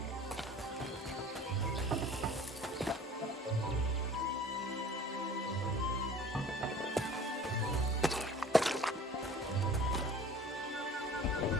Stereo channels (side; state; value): both; normal; correlation 0.46